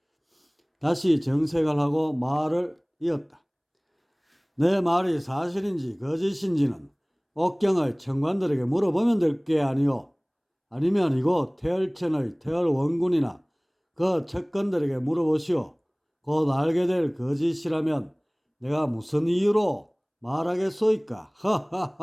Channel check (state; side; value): identical; both; correlation 1.00